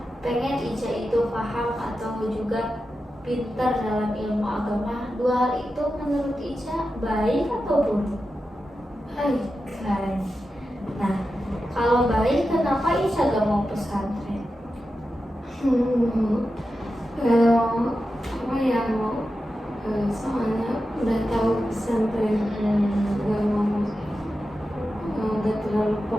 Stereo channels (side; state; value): both; normal; correlation 0.91